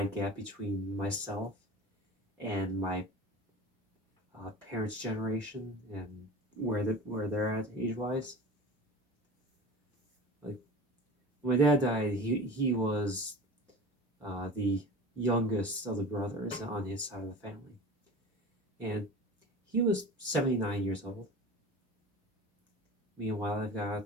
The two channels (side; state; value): both; normal; correlation 0.36